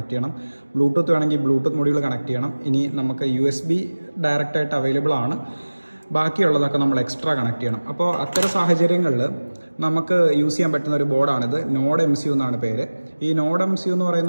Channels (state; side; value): inverted; both; correlation -1.00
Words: ചെയ്യണം, ബ്ലൂടൂത്ത് വേണമെങ്കിൽ ബ്ലൂടൂത്ത് മൊഡ്യൂൾ കണക്ട് ചെയ്യണം. ഇനി നമുക്ക് USB ഡയറക്റ്റായിട്ട് അവൈലബിൾ ആണ്, ബാക്കിയുള്ളതൊക്കെ നമ്മൾ എക്സ്ട്രാ കണക്ട് ചെയ്യണം. അപ്പോൾ അത്തരം സാഹചര്യങ്ങളിൽ നമുക്ക് യൂസ് ചെയ്യാൻ പറ്റുന്ന ഒരു ബോർഡാണിത്. നോഡ് MCU എന്നാണ് പേര്. ഈ നോഡ് MCU എന്ന്